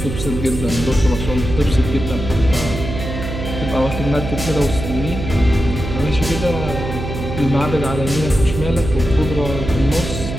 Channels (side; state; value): right; noise; hum, 6 dB below the sound